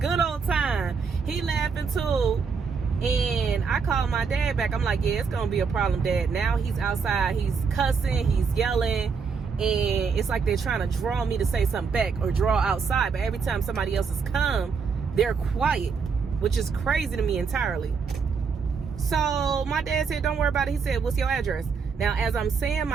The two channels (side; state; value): left; quieter; 5.6 dB